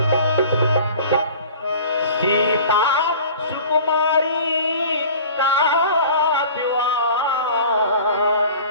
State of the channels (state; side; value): inverted; both; correlation -0.43